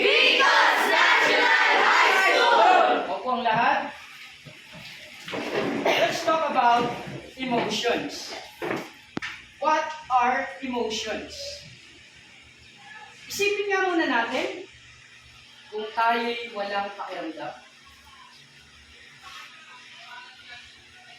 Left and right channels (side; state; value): both; identical; correlation 1.00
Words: National High School! Opo ang lahat. Let's talk about emotions. What are emotions? Isipin nga muna natin kung tayo'y walang pakiramdam.